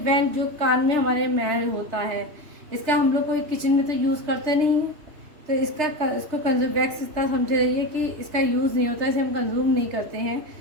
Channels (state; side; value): late; left; 3.3 ms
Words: जो कान में हमारे मैल होता है, इसका हम लोग कोई किचन में तो यूज़ करते नहीं हैं, तो इसको कंज्यूम, वैक्स इतना समझ रही है कि इसका यूज़ नहीं होता, इसे हम कंज्यूम नहीं करते हैं।